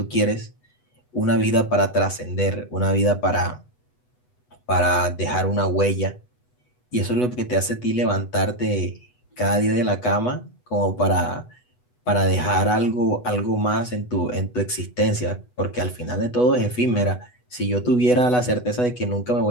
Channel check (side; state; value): right; late; 8.1 ms